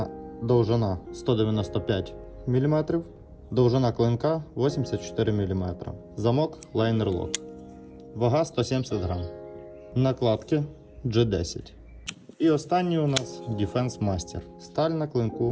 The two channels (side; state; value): both; identical; correlation 1.00